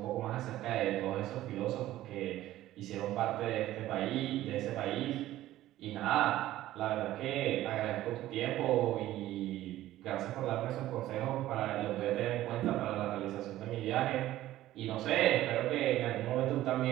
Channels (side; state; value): left; quieter; 14.6 dB